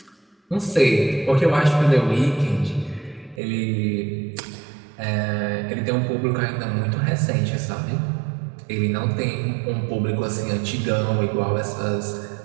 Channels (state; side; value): drops out; left; at 3.4 s